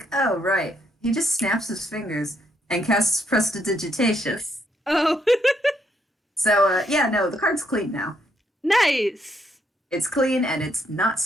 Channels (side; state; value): both; normal; correlation 0.74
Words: oh, right. He just snaps his fingers and casts prestidigitation. Oh. So yeah, no, the card's clean now. Nice. It's clean and it's not